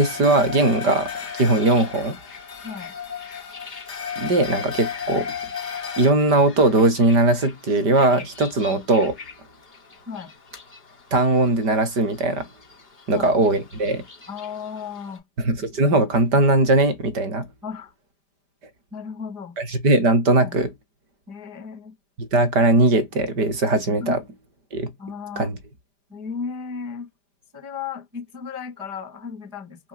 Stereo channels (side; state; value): left; late; 5.0 ms